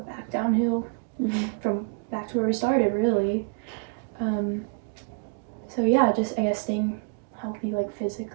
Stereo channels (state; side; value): quieter; left; 37.4 dB